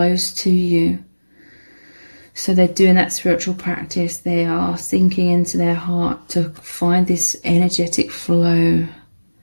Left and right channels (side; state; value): both; inverted; correlation -1.00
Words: to you. So they're doing that spiritual practice. They are sinking into their heart to find this energetic flow,